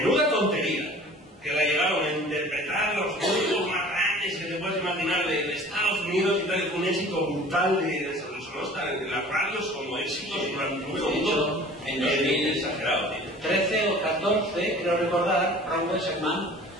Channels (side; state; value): both; normal; correlation 0.46